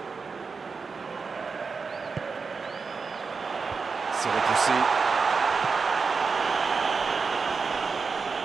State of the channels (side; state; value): left; quieter; 4.9 dB